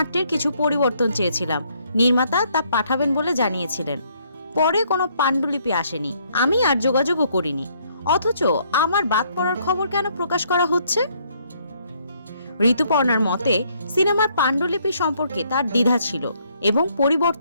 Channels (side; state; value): both; inverted; correlation -0.68